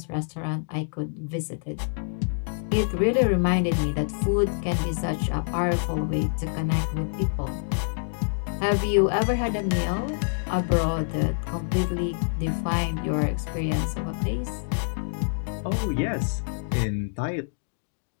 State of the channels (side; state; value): right; silent; digital silence